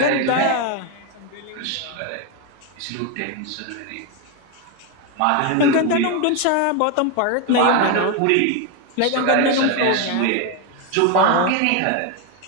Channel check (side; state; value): both; different; correlation 0.02